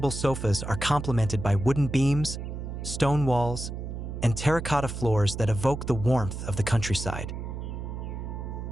sofas are complemented by wooden beams, stone walls, and terracotta floors that evoke the warmth of the countryside.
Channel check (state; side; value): noise; right; hum, 7 dB below the sound